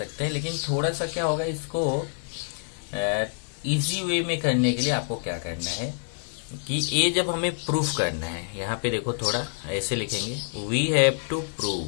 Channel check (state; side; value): silent; right; digital silence